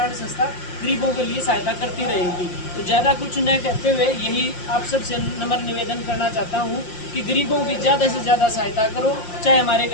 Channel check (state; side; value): late; right; 5.7 ms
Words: संस्था गरीबों के लिए सहायता करती रहेगी। तो ज़्यादा कुछ न कहते हुए यही आप सबसे नम्र निवेदन करना चाहता हूँ कि गरीबों की ज़्यादा से ज़्यादा सहायता करो। चाहे हमारे